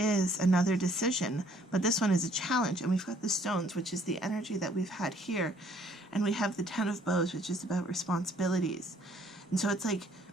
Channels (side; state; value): both; normal; correlation 0.62